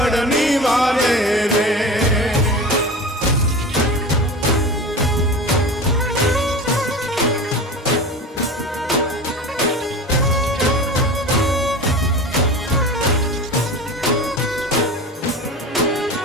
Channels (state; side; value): normal; both; correlation 0.32